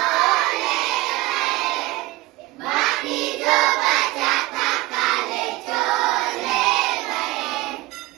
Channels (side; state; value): left; quieter; 19.2 dB